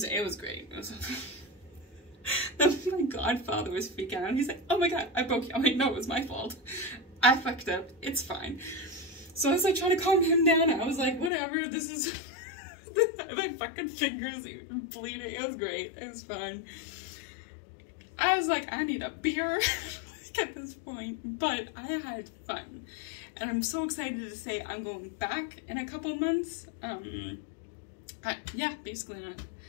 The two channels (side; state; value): right; drops out; at 11.3 s